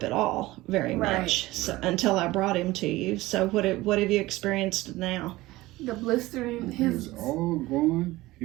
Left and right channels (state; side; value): quieter; left; 18.7 dB